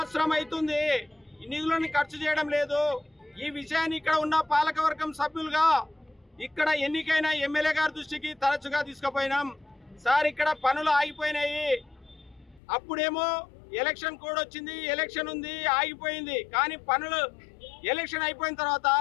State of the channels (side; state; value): right; drops out; at 12.6 s